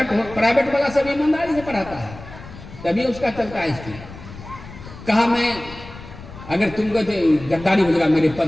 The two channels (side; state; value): left; noise; rumble, 15 dB below the sound